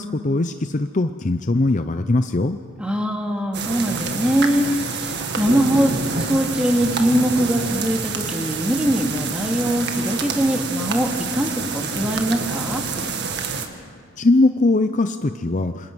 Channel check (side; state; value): both; normal; correlation 0.75